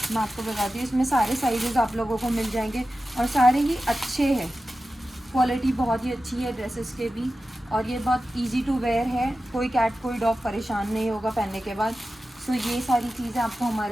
मैं आपको बताती हूँ, इसमें सारे साइजेस आप लोगों को मिल जाएंगे और सारे ही अच्छे हैं, क्वालिटी बहुत ही अच्छी है ड्रेसेस के भी। और ये बहुत इजी टू वेयर है, कोई कैट कोई डॉग परेशान नहीं होगा पहनने के बाद। ये सारी चीज़ें आपको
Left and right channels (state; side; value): normal; both; correlation 0.94